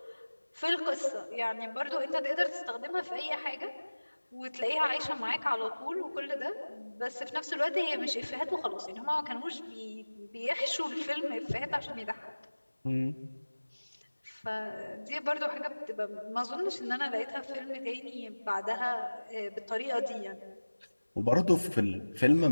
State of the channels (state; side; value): inverted; both; correlation -1.00